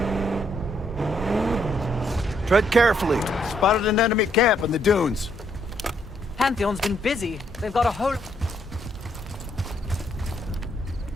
Tread carefully. Spotted an enemy camp in the dunes. Pantheon's been busy. They've got a whole...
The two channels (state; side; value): normal; both; correlation 0.72